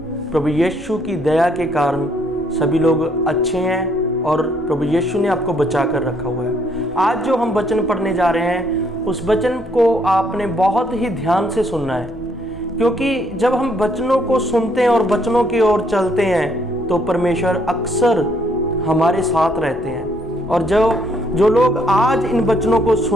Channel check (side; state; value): both; normal; correlation 0.69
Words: प्रभु यीशु की दया के कारण सभी लोग अच्छे हैं और प्रभु यीशु ने आपको बचा कर रखा हुआ है। आज जो हम वचन पढ़ने जा रहे हैं उस वचन को आपने बहुत ही ध्यान से सुनना है, क्योंकि जब हम वचनों को सुनते हैं और वचनों की ओर चलते हैं तो परमेश्वर अक्सर हमारे साथ रहते हैं। और जो लोग आज इन वचनों को